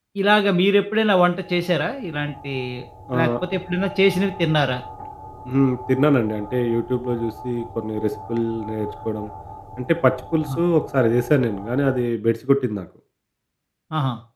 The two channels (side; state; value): both; identical; correlation 1.00